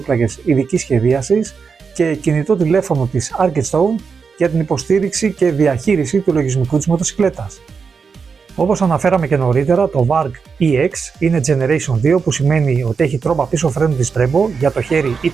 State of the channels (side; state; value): left; quieter; 5.5 dB